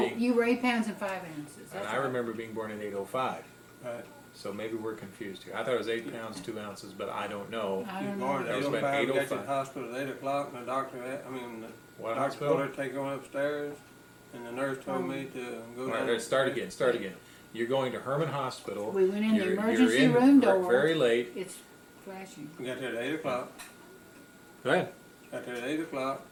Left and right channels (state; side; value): identical; both; correlation 1.00